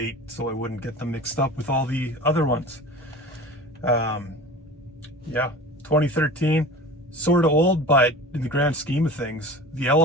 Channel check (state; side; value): normal; both; correlation 0.37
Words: so I wouldn't get them mixed up with all the other ones. Yeah, 2013, sort of old, but in the grand scheme of things, the